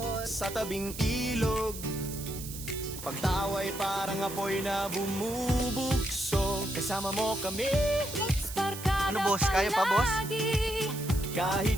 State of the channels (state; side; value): noise; right; hiss, 11 dB below the sound